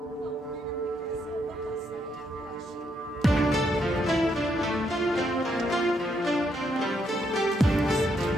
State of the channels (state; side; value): normal; both; correlation 0.76